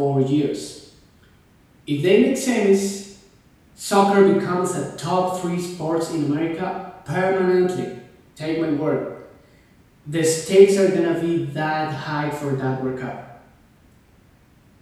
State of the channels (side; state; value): both; identical; correlation 1.00